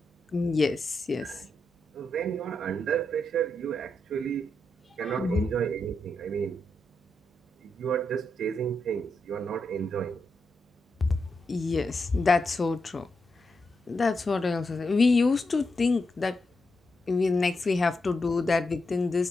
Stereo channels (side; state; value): both; normal; correlation 0.84